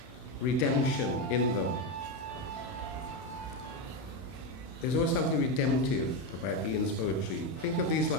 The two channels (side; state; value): right; late; 32 ms